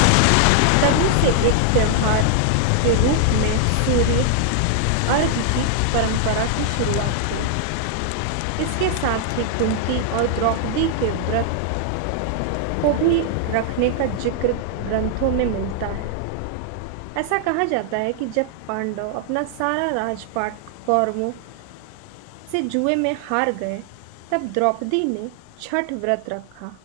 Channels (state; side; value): different; both; correlation 0.00